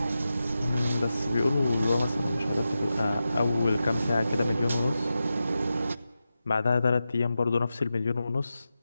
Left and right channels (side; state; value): both; inverted; correlation -0.92